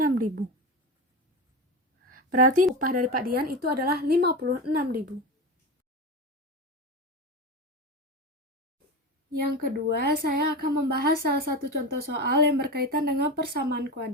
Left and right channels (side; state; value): both; normal; correlation 0.22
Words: Berarti upah dari Pak Dian itu adalah 56.000. Yang kedua, saya akan membahas salah satu contoh soal yang berkaitan dengan persamaan